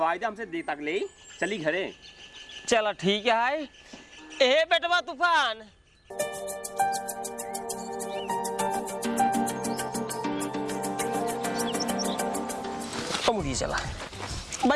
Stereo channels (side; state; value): both; identical; correlation 1.00